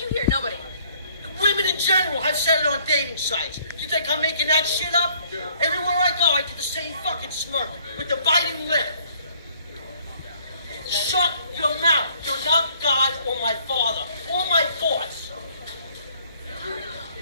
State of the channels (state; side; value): inverted; both; correlation -0.60